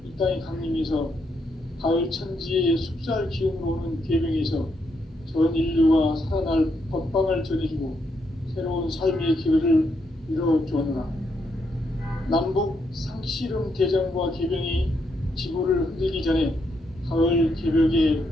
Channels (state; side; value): normal; both; correlation 0.78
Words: 이 땅에 강림해서 가을 천지의 숲살 기운으로 오는 계명에서 전 인류가 살아날 법방을 전해주고 새로운 삶의 기회를 이뤄주었노라. 남북 상씨름 대전과 계병이 지구를 흔들기 전에 가을 개벽의